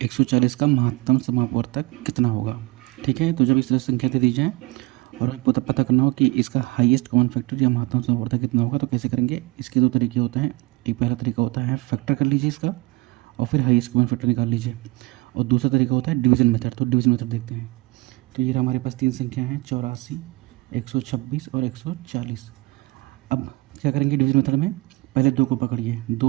140 का महत्तम समापवर्तक कितना होगा। ठीक है, तो जब इस तरह संख्या दे दी जाए और आपको तब पता करना हो कि इसका हाईएस्ट कॉमन फैक्टर या महत्तम समापवर्तक कितना होगा, तो कैसे करेंगे। इसके दो तरीके होते हैं। एक पहला तरीका होता है फैक्टर कर लीजिए इसका और फिर हाईएस्ट कॉमन फैक्टर निकाल लीजिए, और दूसरा तरीका होता है डिवीजन मेथड। तो डिवीजन मेथड देखते हैं। तो ये हमारे पास तीन संख्या हैं, 84, 126 और 140। अब क्या करेंगे डिवीजन मेथड में, पहले दो को पकड़िए,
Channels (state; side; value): quieter; left; 23.5 dB